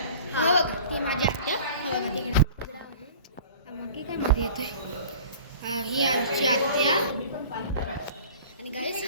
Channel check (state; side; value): inverted; both; correlation -0.43